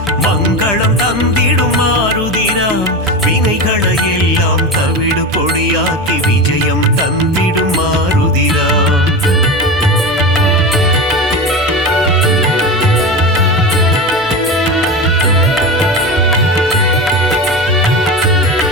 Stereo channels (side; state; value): right; noise; hum, 22 dB below the sound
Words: மங்களம் தந்திடும் மாருதிராம் வினைகளை எல்லாம் தவிடு பொடியாக்கி விஜயம் தந்திடும் மாருதிராம்